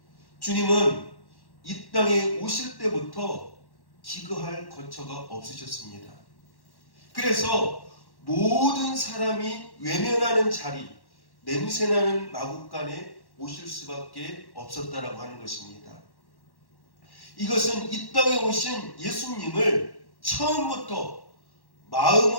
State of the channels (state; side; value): late; right; 1.1 ms